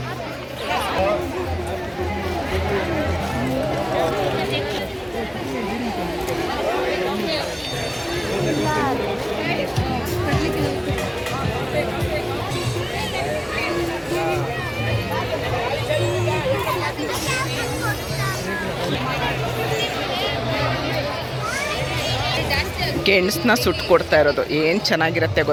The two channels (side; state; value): both; identical; correlation 1.00